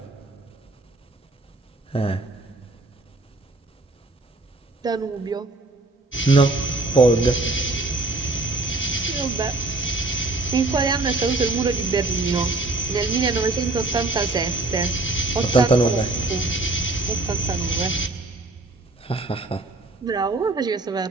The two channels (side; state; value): left; quieter; 3.1 dB